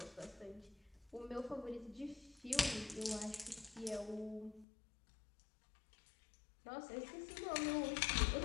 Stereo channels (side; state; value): right; drops out; at 4.7 s